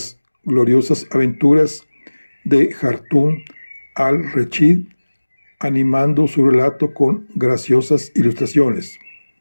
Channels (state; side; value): inverted; both; correlation -1.00